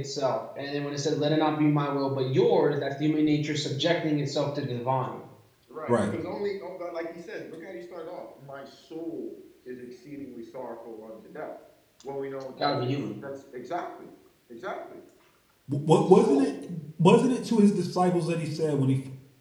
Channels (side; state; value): both; identical; correlation 1.00